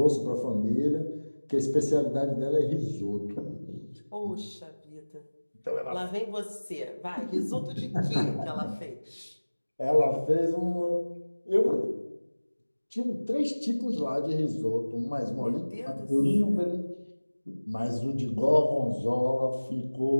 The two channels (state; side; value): inverted; both; correlation -1.00